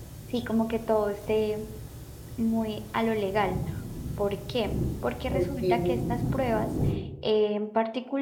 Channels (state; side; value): identical; both; correlation 1.00